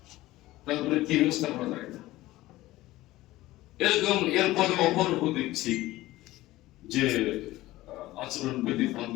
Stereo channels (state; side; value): quieter; right; 17.3 dB